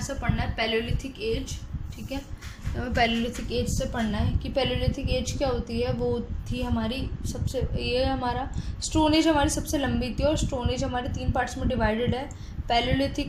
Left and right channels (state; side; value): identical; both; correlation 1.00